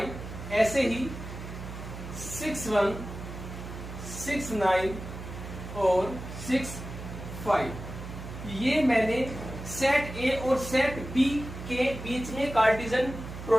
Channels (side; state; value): right; noise; hum, 10 dB below the sound